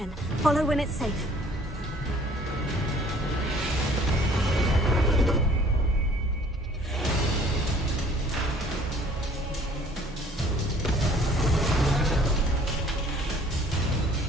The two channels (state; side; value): normal; both; correlation 0.55